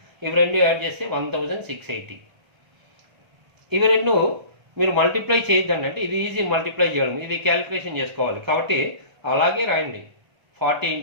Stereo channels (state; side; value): late; left; 1.3 ms